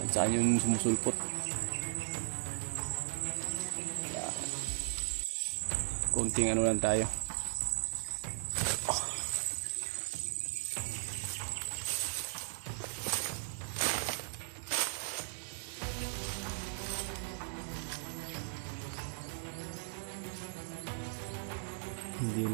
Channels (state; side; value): silent; left; digital silence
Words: Saan yung sumusulpot. Kaya, konting lang tayo. Hindi